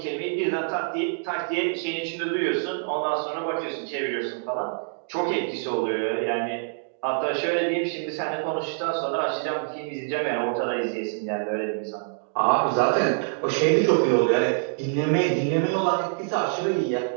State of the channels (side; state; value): left; silent; digital silence